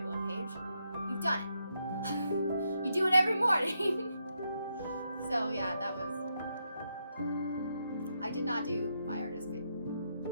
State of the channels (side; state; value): both; inverted; correlation -0.80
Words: 1 page. You've done it. You do it every morning. So yeah, that was... I did not do my